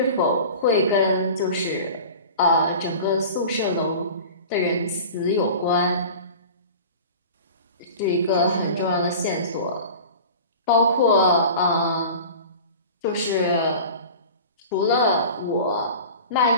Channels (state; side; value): inverted; both; correlation -0.37